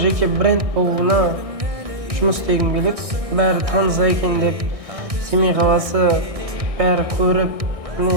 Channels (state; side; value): late; left; 1.6 ms